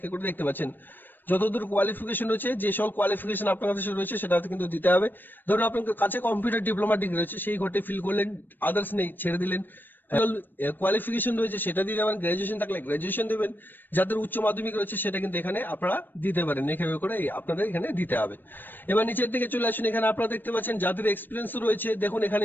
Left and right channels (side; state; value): right; late; 0.092 ms